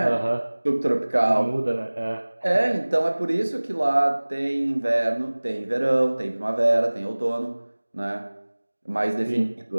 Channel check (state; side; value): inverted; both; correlation -1.00